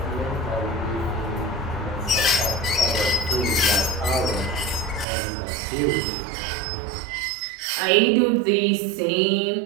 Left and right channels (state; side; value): drops out; left; at 5.1 s